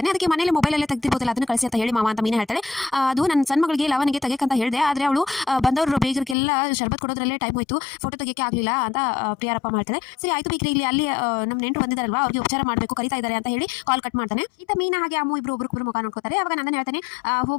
ಅದಕ್ಕೆ ಮನೇಲಿ ಮೊಬೈಲಲ್ಲೇ ತೆಗ್ದಿರ್ಬೋದಲ್ಲ, ಅದನ್ನು ಕಳಿಸಿ ಅಂತ ಹೇಳಿ ಮಾವ ಅಂತ ಮೀನಾ ಹೇಳ್ತಾಳೆ. ಅದು ನನ್ನ ಸಣ್ಣ ಮಗಳಿಗೆ ಲವನಿಗೆ ತೆಗೆಯಕ್ಕಂತ ಹೇಳಿದೆ, ಆದರೆ ಅವಳು ಬಂದವರು ಬೇಗರಿಗೆಲ್ಲ ಶರ್ಬತ್ ಕೊಡೋದ್ರಲ್ಲೇ ಟೈಮ್ ಹೋಯ್ತು, ಫೋಟೋ ತೆಗಿಯಕ್ಕೆ ಆಗಲಿಲ್ಲ ಅಂತ ಪ್ರಿಯಾರಪ್ಪ ಮಾಡ್ತಾರೆ. ಸರಿ ಆಯ್ತು ಬಿಗ್ರೆ, ಇಲ್ಲಿ ಅಲ್ಲಿ ನಮ್ಮ ನೆಂಟರು ಬಂದಿದ್ದಾರಲ್ವಾ, ಅವ್ರಿಗೆ ಉಪಚಾರ ಮಾಡಬೇಕು, ಕರಿತಾ ಇದ್ದಾರೆ ಅಂತ ಹೇಳಿ ಕಾಲ್ ಕಟ್ ಮಾಡ್ತಾನೆ. ಇತ್ತ ಮೀನಾ ಹಾಗೆ ಅಮ್ಮು ಇಬ್ರು ಒಬ್ರು ಮುಖ ನೋಡ್ಕೋತಾರೆ. ಅವಾಗ ನಂದನ್ ಹೇಳ್ತಾನೆ,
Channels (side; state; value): right; drops out; at 6.4 s